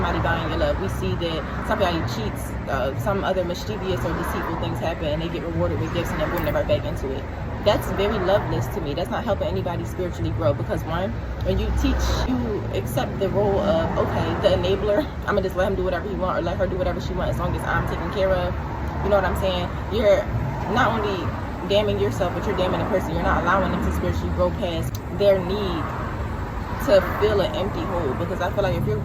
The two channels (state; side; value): identical; both; correlation 1.00